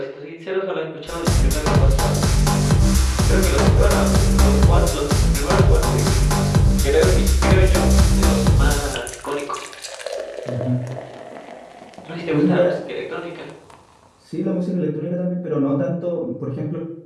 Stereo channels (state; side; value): identical; both; correlation 1.00